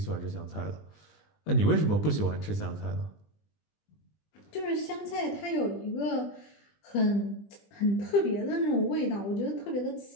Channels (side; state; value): right; late; 20 ms